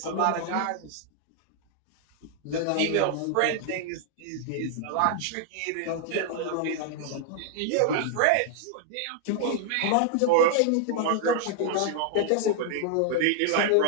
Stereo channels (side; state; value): both; different; correlation 0.00